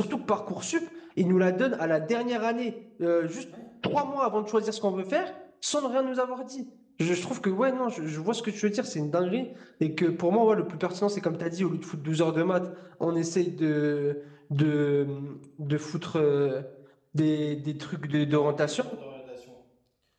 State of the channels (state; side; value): identical; both; correlation 1.00